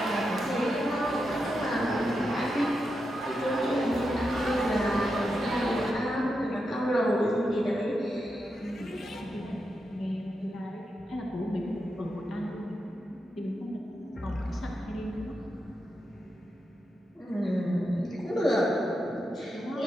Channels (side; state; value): both; normal; correlation 0.87